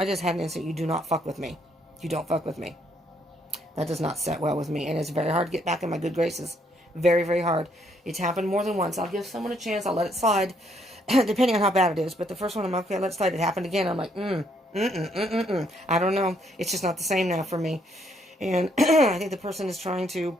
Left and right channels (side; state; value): both; normal; correlation 0.70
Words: just had an instant, you do not fuck with me. You don't fuck with me. That does not set well with me, and it's very hard to get back in my good graces. Very, very hard. It's happened more than once. I'll give someone a chance. I'll let it slide, depending on how bad it is. But the first one, I'm okay, let it slide. It happened again. I'm like, I don't know. It's just not the same now for me. And I think the person is trying to,